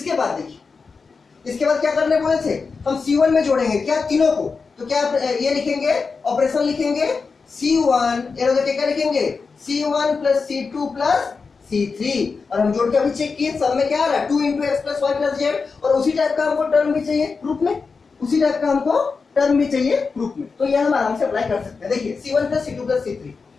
बाद देखिए, इसके बाद क्या करने बोले थे, हम C1 में जोड़ेंगे क्या तीनों को। तो क्या ये लिखेंगे, ऑपरेशन लिखेंगे C1, क्या लिखेंगे C1 plus C2 plus C3 और हम जोड़ के अभी चेक किए, सब में क्या आ रहा है 2 into x plus y plus z. और उसी टाइप का हमको टर्म भी चाहिए ग्रुप में, उसी टाइप का हमको टर्म भी चाहिए ग्रुप में। तो ये हम आराम से अप्लाई कर सकते हैं। देखिए C1 plus C2 plus C3,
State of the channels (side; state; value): right; quieter; 4.8 dB